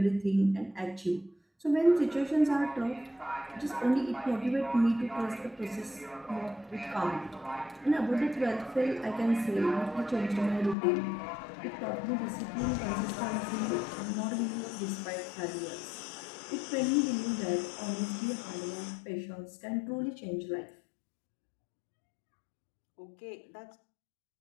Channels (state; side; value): drops out; right; at 10.8 s